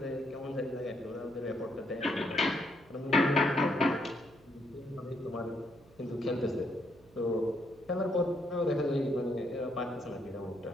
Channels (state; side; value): noise; right; hum, 27 dB below the sound